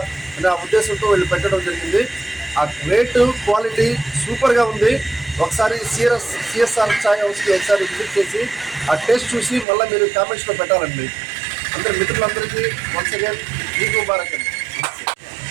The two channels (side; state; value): left; drops out; at 9.7 s